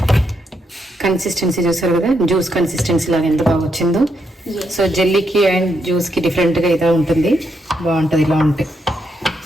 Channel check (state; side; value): normal; both; correlation 0.79